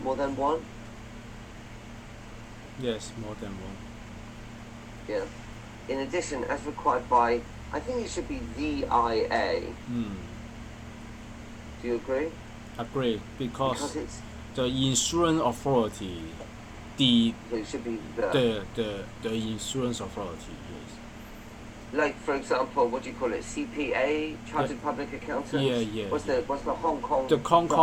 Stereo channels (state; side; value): identical; both; correlation 1.00